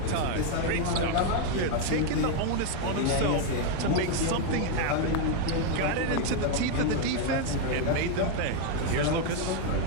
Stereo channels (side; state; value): both; different; correlation 0.00